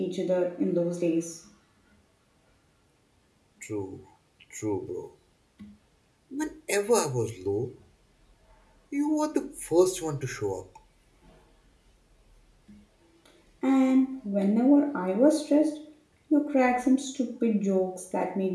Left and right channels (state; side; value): identical; both; correlation 1.00